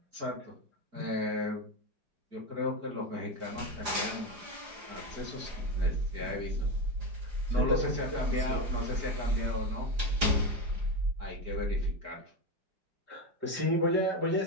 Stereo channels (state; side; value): late; left; 4.9 ms